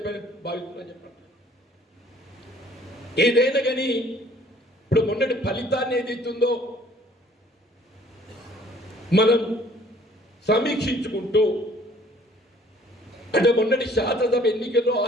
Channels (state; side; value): normal; both; correlation 0.56